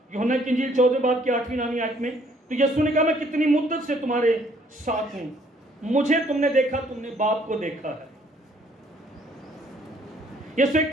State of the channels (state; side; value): normal; both; correlation 0.63